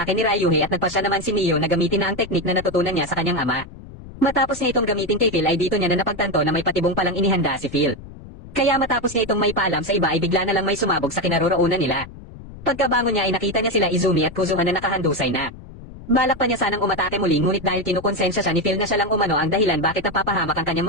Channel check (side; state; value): left; noise; rumble, 16 dB below the sound